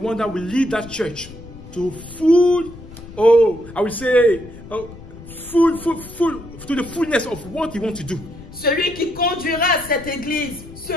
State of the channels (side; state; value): left; noise; rumble, 16 dB below the sound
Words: that will lead that church to full, oh, I would say, full, to the fullness of what He wants to do. Celui qui conduira cette église